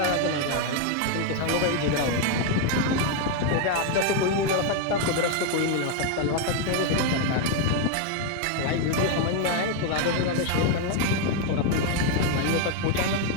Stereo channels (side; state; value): both; different; correlation 0.01